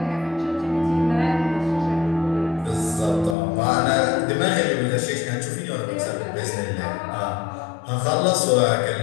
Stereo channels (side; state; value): right; drops out; at 3.4 s